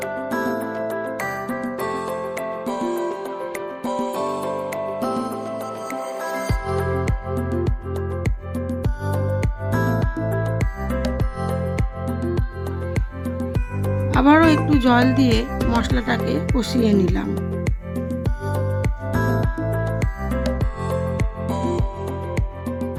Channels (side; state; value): both; identical; correlation 1.00